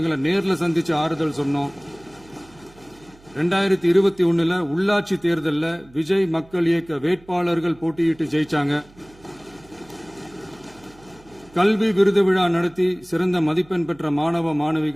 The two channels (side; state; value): right; noise; hum, 26 dB below the sound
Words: நேர்ல சந்திச்சு ஆறுதல் சொன்னோம். 2021 உள்ளாட்சி தேர்தலில் விஜய் மக்கள் இயக்க வேட்பாளர்கள் போட்டியிட்டு ஜெயிச்சாங்க. கல்வி விருது விழா நடத்தி சிறந்த மதிப்பெண் பெற்ற மாணவ